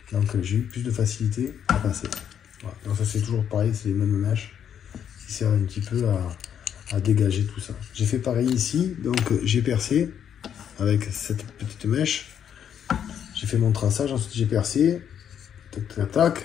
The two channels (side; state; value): right; quieter; 8.9 dB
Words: Donc j'ai eu plus de facilité à passer. Voilà. Donc ça c'est toujours pareil, c'est les mêmes mèches qui servent un petit peu à dégager tout ça. J'ai fait pareil ici, donc j'ai percé avec cette petite mèche. J'ai fait mon traçage, ensuite j'ai percé. Tac, tac.